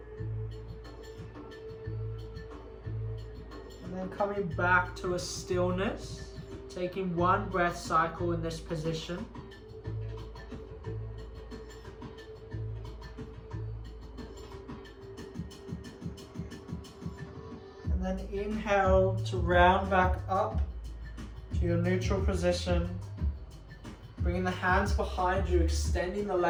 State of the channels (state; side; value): identical; both; correlation 1.00